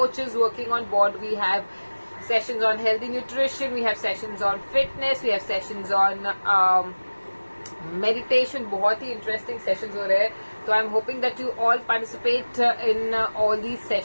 working on board. We have sessions on healthy nutrition, we have sessions on fitness, we have sessions on meditation. बहुत ही interesting sessions हो रहे हैं. So I'm hoping that you all participate in all these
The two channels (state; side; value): inverted; both; correlation -1.00